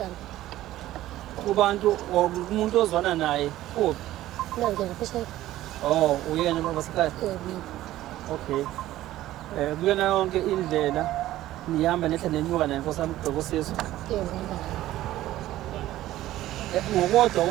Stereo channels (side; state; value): left; quieter; 14.7 dB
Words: kubantu umuntu ozwana naye uphi nange ngaphesheya uyena basekhaya okay kuyona yonke indlela nihamba nehla nenyuka naye Nkosi yami kubheka usizo. Yebo ngihamba naye.